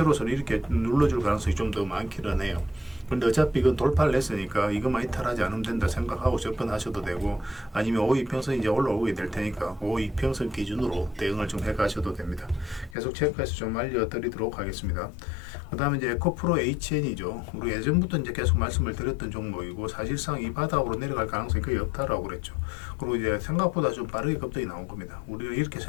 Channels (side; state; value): right; drops out; at 13.0 s